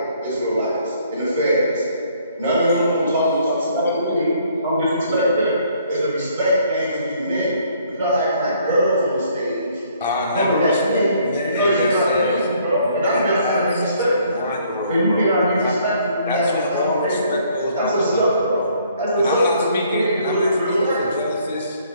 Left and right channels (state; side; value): inverted; both; correlation -0.63